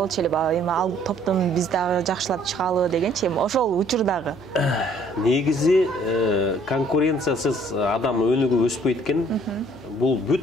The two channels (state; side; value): noise; left; hum, 23 dB below the sound